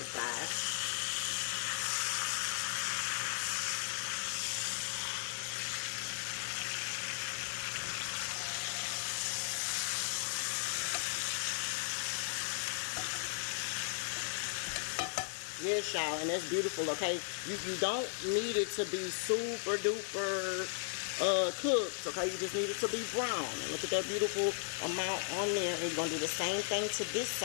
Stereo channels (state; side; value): silent; right; digital silence